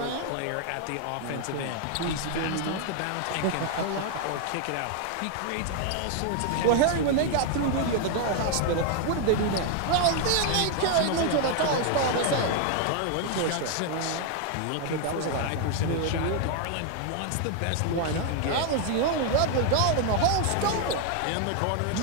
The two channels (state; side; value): different; both; correlation 0.00